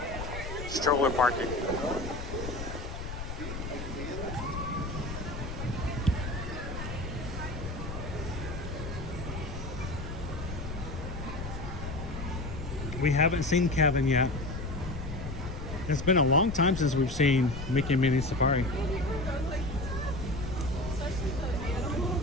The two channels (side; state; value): left; noise; rumble, 7 dB below the sound